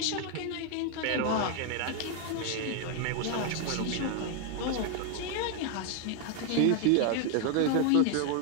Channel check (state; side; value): different; both; correlation 0.00